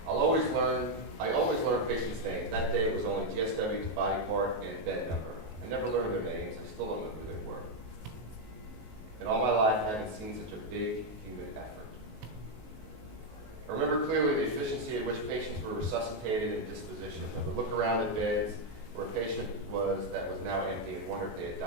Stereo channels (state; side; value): late; left; 19 ms